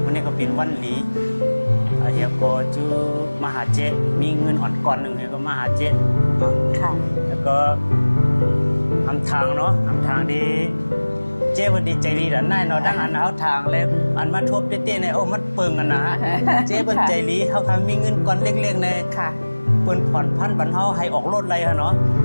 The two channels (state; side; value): inverted; both; correlation -1.00